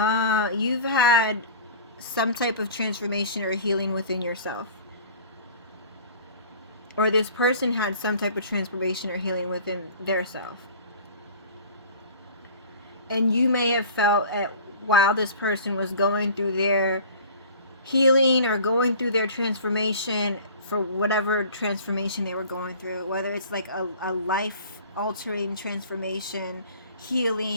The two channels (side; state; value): both; inverted; correlation -0.43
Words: some type of transformation or healing within yourself. Or this person had some type of transformation or healing within their self. And you may have felt while this person was going through their healing or going through their transformation, for whatever transformation they were going through, whether it's like a life-altering transformation,